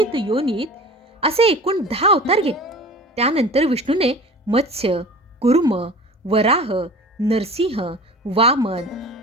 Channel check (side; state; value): both; normal; correlation 0.40